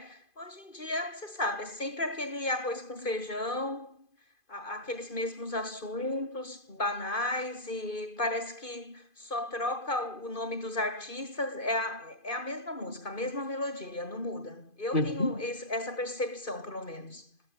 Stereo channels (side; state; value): right; late; 2.5 ms